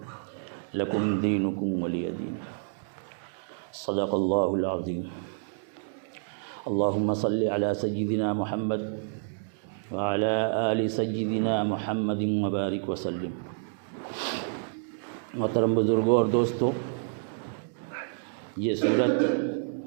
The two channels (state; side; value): silent; left; digital silence